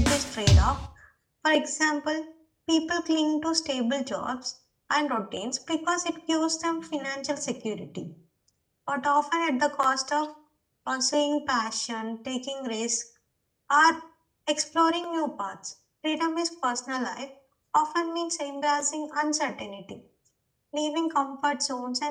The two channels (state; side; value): identical; both; correlation 1.00